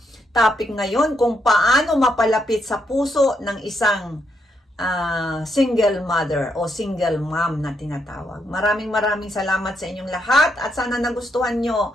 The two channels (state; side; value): normal; both; correlation 0.78